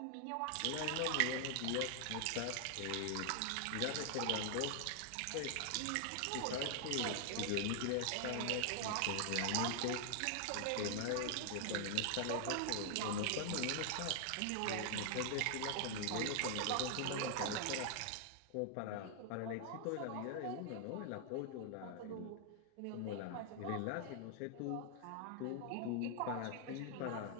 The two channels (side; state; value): both; different; correlation 0.00